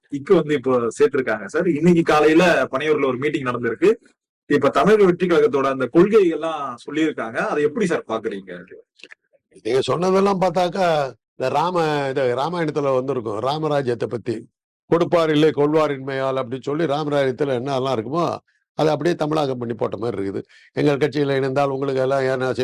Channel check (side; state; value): both; identical; correlation 1.00